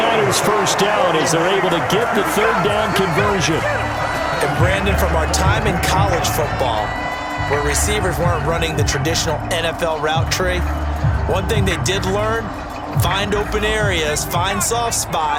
first down as they're able to get the 3rd down conversion. And Brandon, from our time in college football, where receivers weren't running the traditional NFL route tree, one thing they did learn, find open areas, find soft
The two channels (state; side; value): identical; both; correlation 1.00